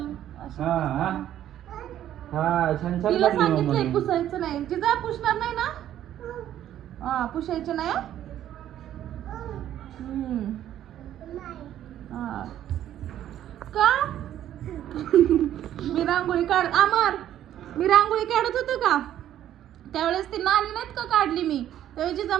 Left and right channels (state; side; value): quieter; left; 11.6 dB